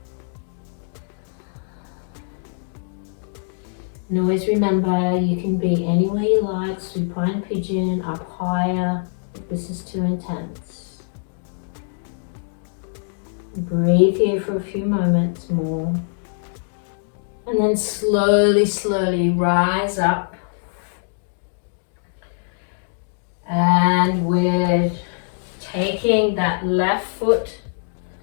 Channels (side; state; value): right; silent; 64 dB below the other